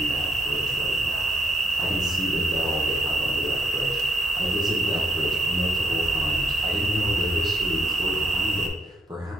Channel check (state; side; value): normal; both; correlation 0.75